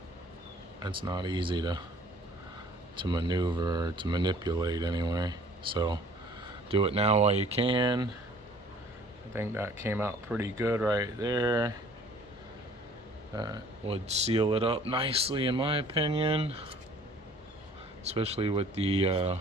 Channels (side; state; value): both; normal; correlation 0.53